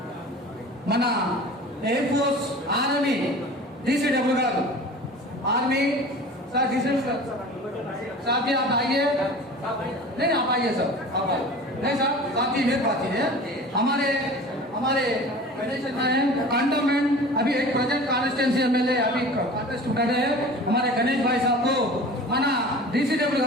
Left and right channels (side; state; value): both; normal; correlation 0.39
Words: మన ఎయిర్ ఫోర్స్ ఆర్మీ DCW गारू आर्मी सर DCW साहब जी आप आइए नहीं आप आइए सर आप आइए नहीं सर साहब जी मेरी बात है हमारे कंटोनमेंट अभी एक प्रोजेक्ट कॉन्स्टिट्यूंसी MLA अभी कॉन्टेस्ट कर रहे हैं हमारे गणेश भाई साहब को మన DCW